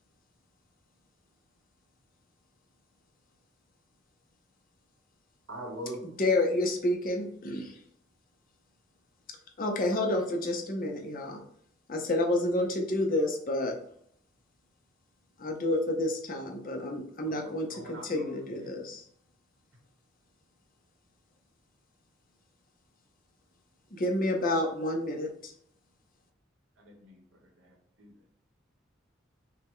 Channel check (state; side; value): normal; both; correlation 0.38